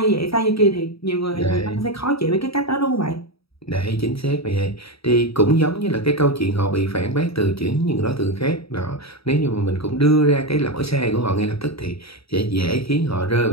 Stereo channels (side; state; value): right; late; 0.77 ms